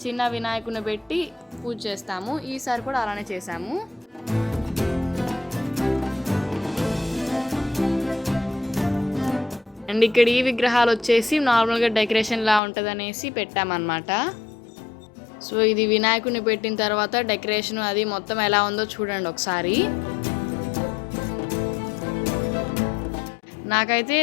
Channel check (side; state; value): right; drops out; at 12.6 s